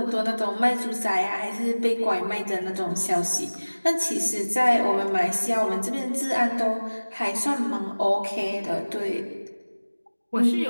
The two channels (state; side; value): inverted; both; correlation -1.00